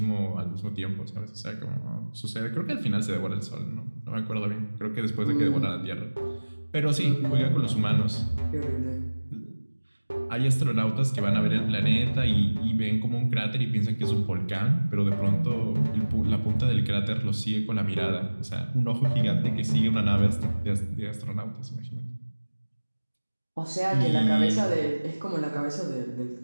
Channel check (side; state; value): both; inverted; correlation -1.00